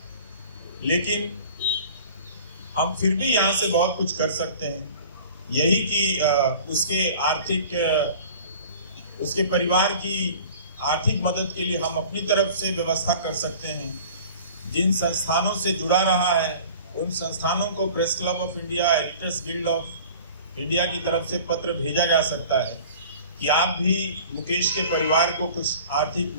लेकिन हम फिर भी यहाँ से बहुत कुछ कर सकते हैं, यही कि उसके परिवार की आर्थिक मदद के लिए हम अपनी तरफ से व्यवस्था कर सकते हैं। जिन संस्थानों से जुड़ा रहा है उन संस्थानों को press club of India, editors guild of India की तरफ से पत्र भेजा जा सकता है कि आप भी मुकेश के परिवार को कुछ आर्थिक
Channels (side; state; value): both; inverted; correlation -0.44